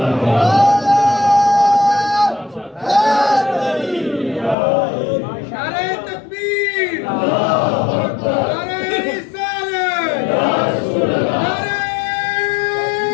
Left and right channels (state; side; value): drops out; right; at 4.5 s